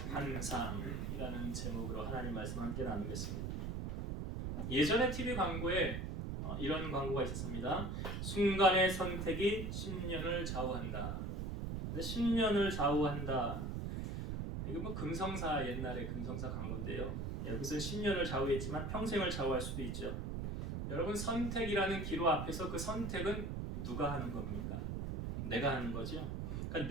환상이라는 제목으로 하나님 말씀 함께 나누겠습니다. 예전에 TV 광고에 이런 광고가 있었습니다. 순간의 선택이 10년을 좌우한다. 근데 10년을 좌우한다. 이거 뭐 금성사, 옛날에 금성사 광고인데요. 여기서 10년을 좌우했지만 평생을 좌우할 수도 있죠. 여러분, 선택이라는 기로 앞에서 그 선택은 누가 하는 겁니까? 내가 하는 거죠.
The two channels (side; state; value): right; noise; rumble, 3 dB below the sound